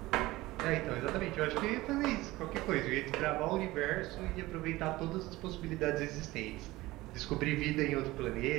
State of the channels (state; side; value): quieter; left; 18.9 dB